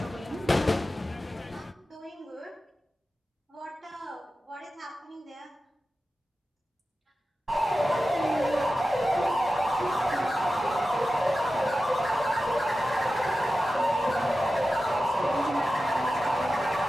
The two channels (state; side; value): normal; both; correlation 0.93